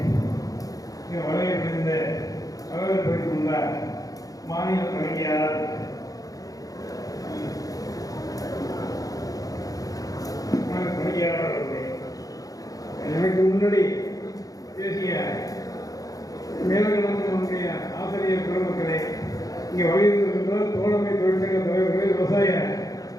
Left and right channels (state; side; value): late; right; 0.17 ms